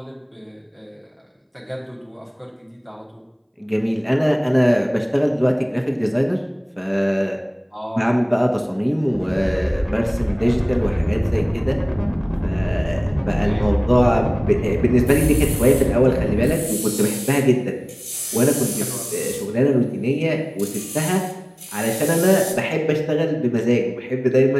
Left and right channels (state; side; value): identical; both; correlation 1.00